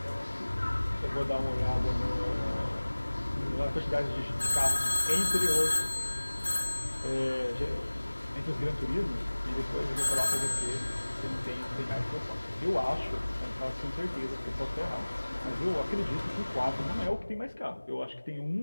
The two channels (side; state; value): both; inverted; correlation -1.00